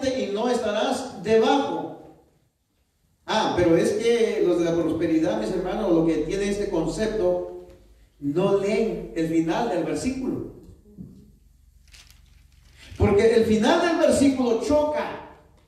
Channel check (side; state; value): both; identical; correlation 1.00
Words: y no estarás debajo. Pero es que los de la prosperidad, mis hermanos, lo que tiene este concepto, no leen el final del versículo. Porque el final del versículo choca.